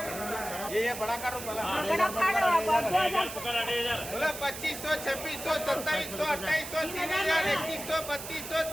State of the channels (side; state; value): right; noise; hiss, 10 dB below the sound